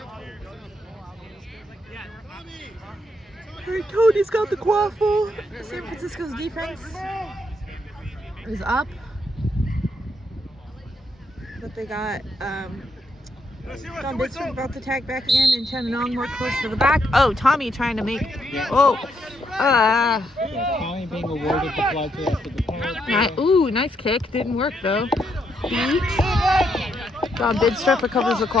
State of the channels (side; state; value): both; normal; correlation 0.77